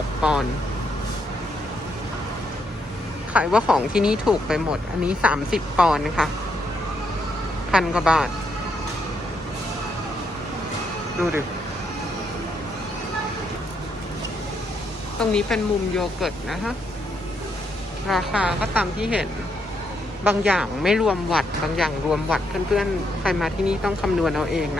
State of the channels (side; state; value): both; normal; correlation 0.77